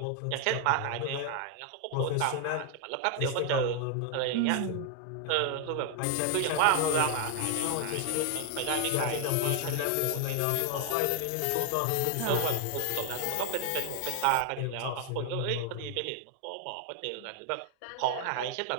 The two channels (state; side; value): different; both; correlation 0.00